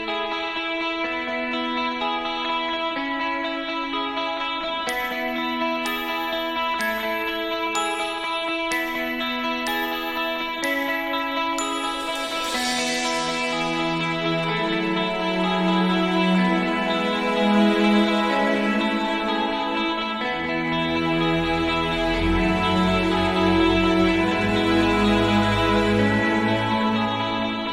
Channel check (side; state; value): both; identical; correlation 1.00